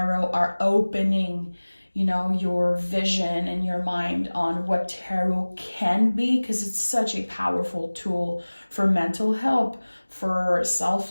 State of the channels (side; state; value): both; inverted; correlation -1.00